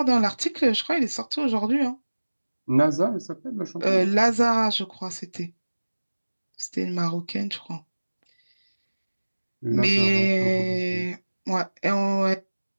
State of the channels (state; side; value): inverted; both; correlation -1.00